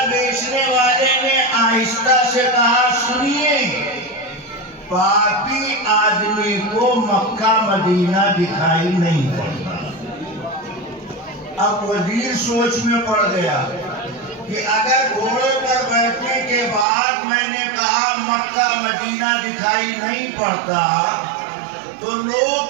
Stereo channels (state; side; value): drops out; left; at 16.9 s